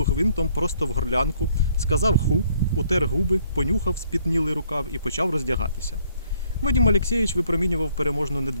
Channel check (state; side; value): inverted; both; correlation -0.65